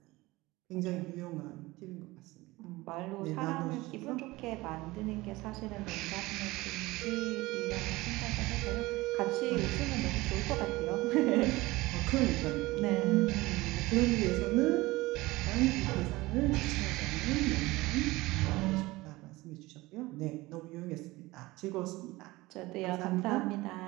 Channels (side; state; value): left; quieter; 20.4 dB